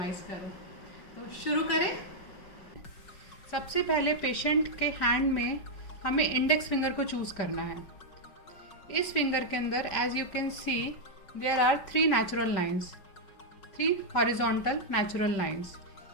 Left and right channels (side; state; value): right; late; 5.1 ms